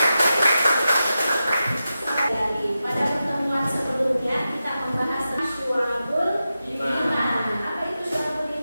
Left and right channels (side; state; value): both; inverted; correlation -0.91